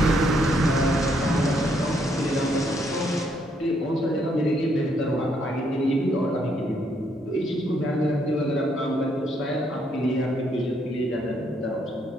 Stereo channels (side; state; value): both; normal; correlation 0.72